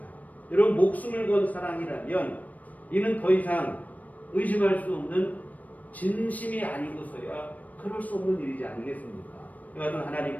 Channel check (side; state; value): right; late; 0.074 ms